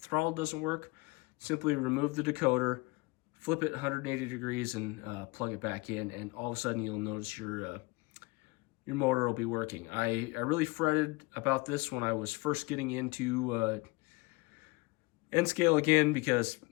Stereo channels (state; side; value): quieter; right; 25.5 dB